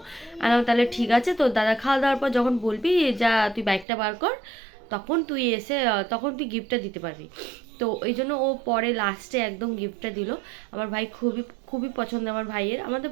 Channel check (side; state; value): left; drops out; at 3.9 s